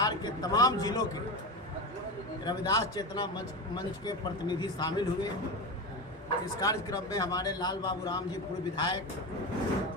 के तमाम जिलों के रविदास चेतना मंच के प्रतिनिधि शामिल हुए। इस कार्यक्रम में हमारे लाल बाबू राम जी पूर्व विधायक,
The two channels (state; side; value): normal; both; correlation 0.21